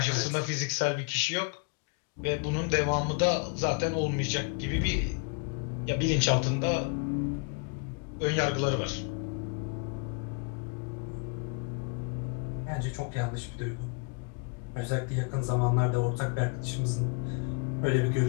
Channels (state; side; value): quieter; right; 33.6 dB